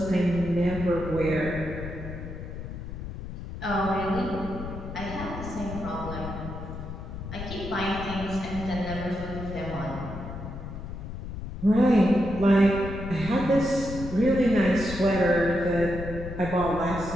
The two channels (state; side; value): noise; left; rumble, 9 dB below the sound